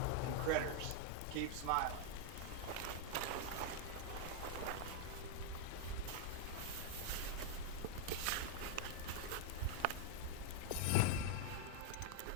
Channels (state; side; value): different; both; correlation 0.00